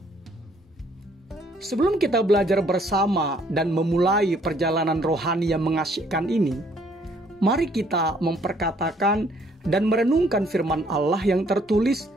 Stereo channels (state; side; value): normal; both; correlation 0.64